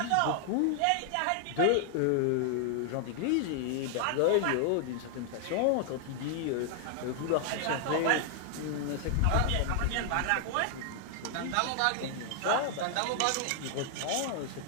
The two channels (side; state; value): both; different; correlation 0.00